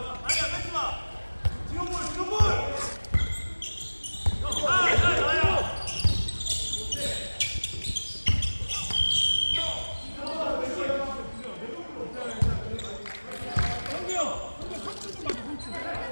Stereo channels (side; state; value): both; inverted; correlation -1.00